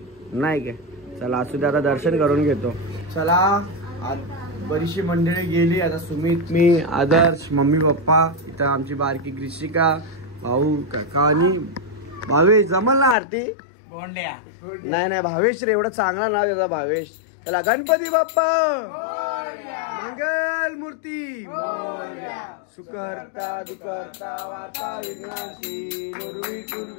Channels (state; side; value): drops out; right; at 13.2 s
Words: नाही काय। चला असू दे आता दर्शन करून घेतो। चला बरीचशी मंडळी गेली, आता सुमित मी आदर्श मम्मी पप्पा इथं आमची बारकी ग्रीशिका भाऊ काका आणि भावेश जमल ना आरती नाही भावेश रे एवढं चांगला नाव त्याचा भावेश। चला गणपती बाप्पा मंगल मूर्ती मोरया, सुकर्ता दुकर्ता वाता विघ्नाची नुरवी